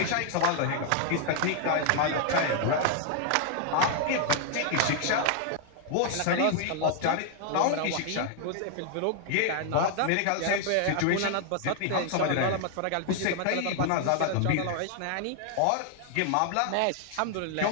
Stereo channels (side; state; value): both; different; correlation 0.00